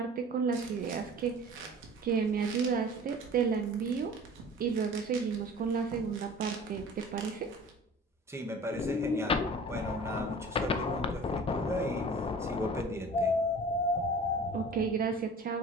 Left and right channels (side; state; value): both; normal; correlation 0.42